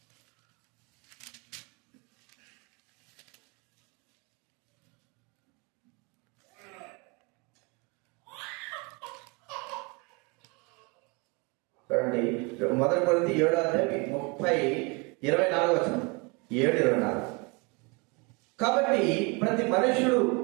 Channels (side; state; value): left; quieter; 29.7 dB